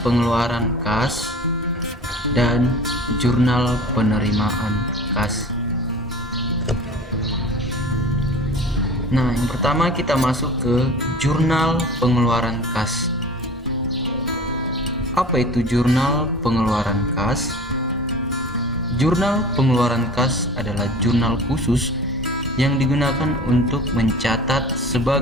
pengeluaran kas dan jurnal penerimaan kas. Nah, yang pertama kita masuk ke jurnal pengeluaran kas. Apa itu jurnal pengeluaran kas? Jurnal pengeluaran kas adalah jurnal khusus yang digunakan untuk mencatat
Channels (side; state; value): both; normal; correlation 0.41